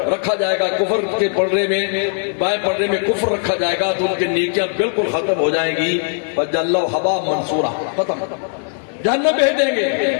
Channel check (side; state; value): right; silent; digital silence